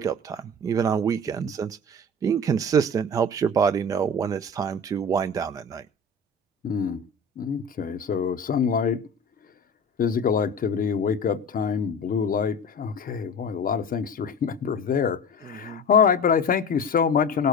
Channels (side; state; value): both; normal; correlation 0.34